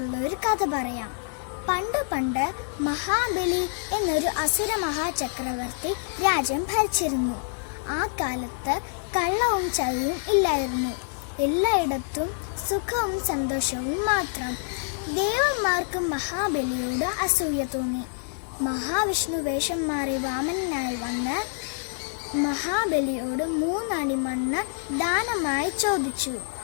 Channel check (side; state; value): right; silent; digital silence